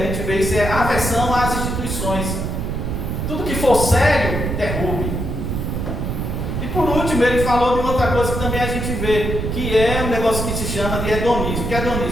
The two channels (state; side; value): noise; right; rumble, 2 dB below the sound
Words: gente vê isso, é aversão às instituições. Tudo que for sério, derrube. E por último, ele falou de outra coisa que também a gente vê, que é um negócio que se chama de hedonismo. O que é